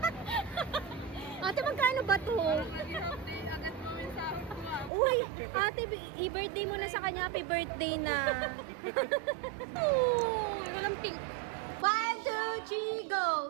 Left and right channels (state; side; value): drops out; left; at 4.9 s